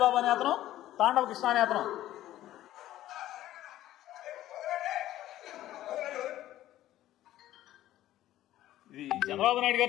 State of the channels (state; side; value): quieter; right; 13.9 dB